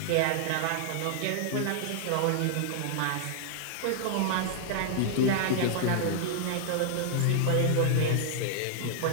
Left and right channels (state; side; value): different; both; correlation -0.01